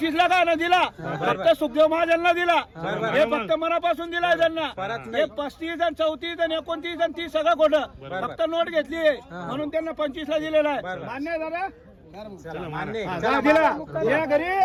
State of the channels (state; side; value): identical; both; correlation 1.00